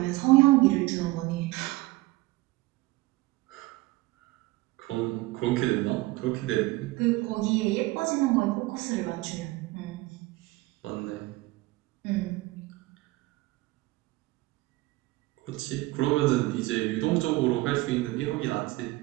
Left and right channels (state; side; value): quieter; left; 20.2 dB